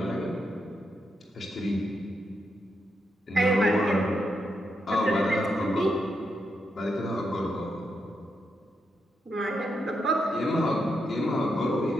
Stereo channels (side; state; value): both; normal; correlation 0.83